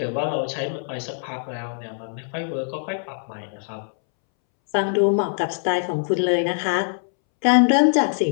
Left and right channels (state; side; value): silent; right; 63 dB below the other